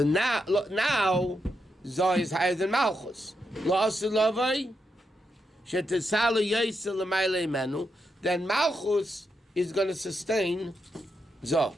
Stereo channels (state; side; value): normal; both; correlation 0.83